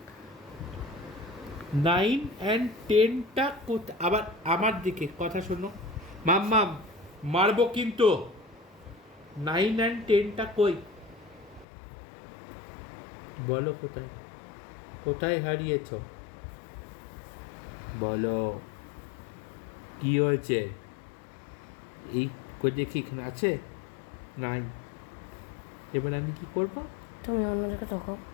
9 and 10টা আবার আমার দিকে কথা শোনো মাম্মাম, মারবো কিন্তু। 9 and 10টা কই? বলো কোথায়, কোথায় হারিয়েছো? বলো কি হয়েছে? এই কই দেখি, এখানে আছে 9। এবার আমি কি করব? তুমি অন্য জায়গায় দেখো।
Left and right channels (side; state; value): right; drops out; at 11.7 s